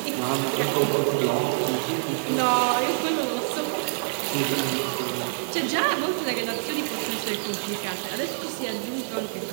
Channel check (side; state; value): left; silent; digital silence